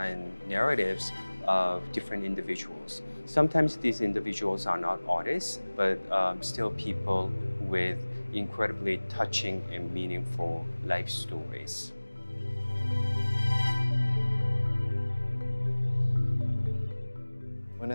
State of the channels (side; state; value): both; inverted; correlation -1.00